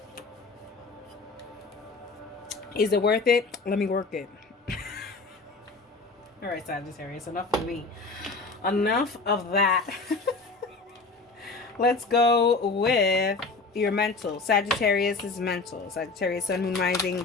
Is it worth it? Let me work it. All right, Sagittarius, enough of me. Enough of that. Let's go with your mental. Sagittarius is mental. Sagittarius, Sun, Moon, Rising,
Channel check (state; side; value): quieter; right; 3.9 dB